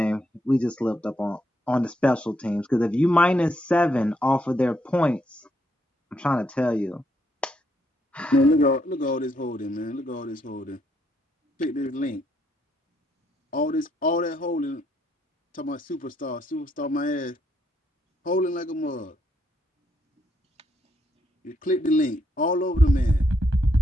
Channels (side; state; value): both; normal; correlation 0.75